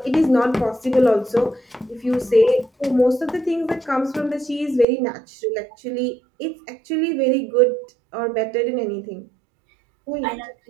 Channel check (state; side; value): drops out; left; at 4.9 s